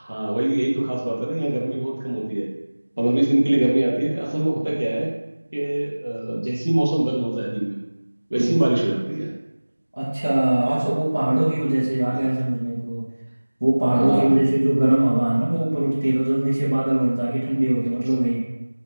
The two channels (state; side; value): inverted; both; correlation -1.00